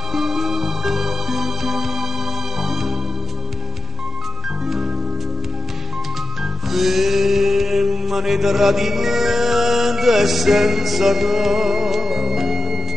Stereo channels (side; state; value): both; normal; correlation 0.90